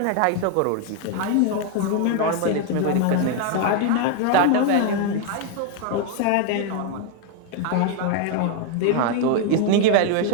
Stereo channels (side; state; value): both; different; correlation 0.01